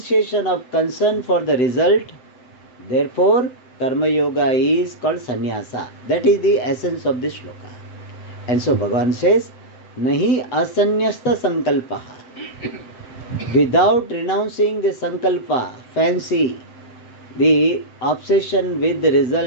of concern for the result, therefore karma yoga is called sannyasa. That is the essence of this shloka. And so Bhagavan says, Nahi asanyasta sankalpaha. Without renouncing the sankalpa, fancy, the obsession with the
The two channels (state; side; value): late; right; 7.8 ms